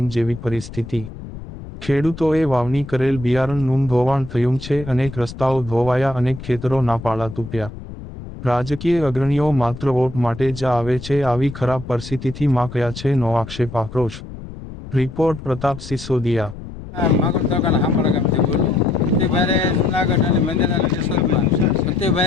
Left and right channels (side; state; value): left; noise; rumble, 13 dB below the sound